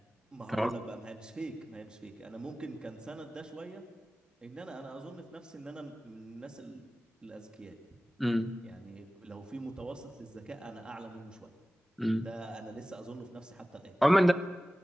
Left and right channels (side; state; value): both; normal; correlation 0.96